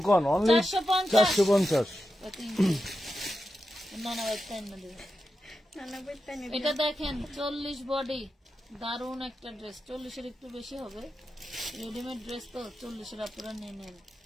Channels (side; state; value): both; normal; correlation 0.89